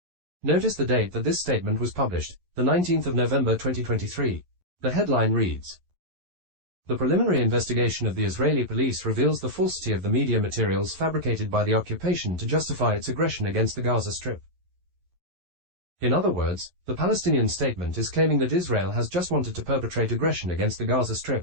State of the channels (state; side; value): late; left; 11 ms